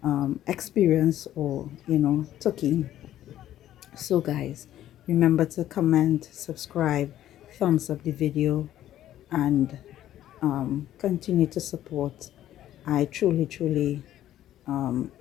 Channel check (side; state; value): right; quieter; 12.5 dB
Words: experience or took in. So guys, remember to comment, subscribe, thumbs up the video, and continue to support. I truly